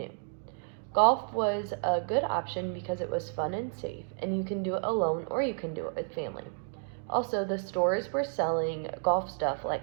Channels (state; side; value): silent; left; 57 dB below the other